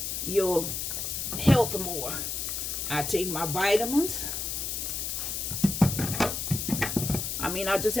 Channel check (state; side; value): noise; left; hiss, 3 dB below the sound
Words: your health more. I take my vitamins. I just